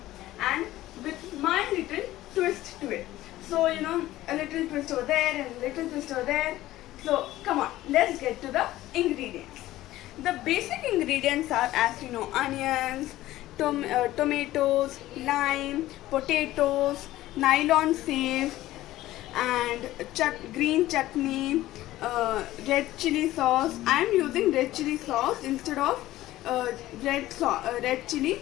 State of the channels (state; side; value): quieter; right; 15.6 dB